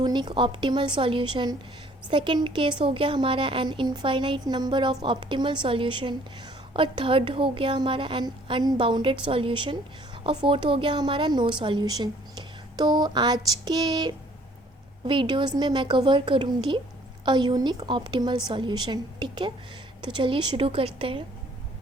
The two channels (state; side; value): normal; both; correlation 0.58